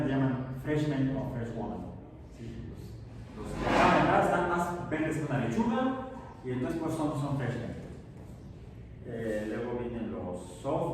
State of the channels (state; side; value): identical; both; correlation 1.00